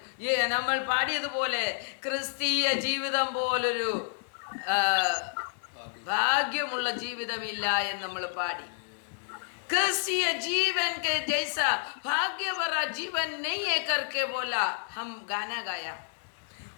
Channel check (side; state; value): right; silent; digital silence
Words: നമ്മൾ പാടിയതുപോലെ ക്രിസ്തീയ ജീവിതം പോലൊരു ഭാഗ്യമുള്ള ജീവിതമില്ല എന്ന് നമ്മൾ പാടി. क्रिस्तीय जीवन के जैसा भाग्य भरा जीवन नहीं है करके बोला, हम गाना गाया।